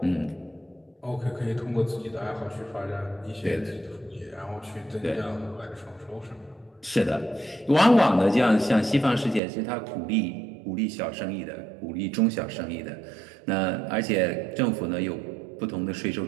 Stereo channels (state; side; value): drops out; left; at 9.4 s